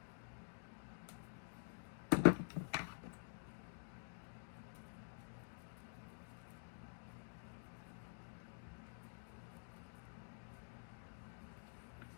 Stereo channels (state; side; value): silent; right; digital silence